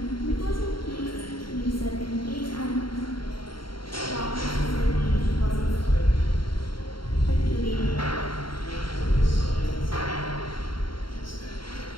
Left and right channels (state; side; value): late; right; 0.73 ms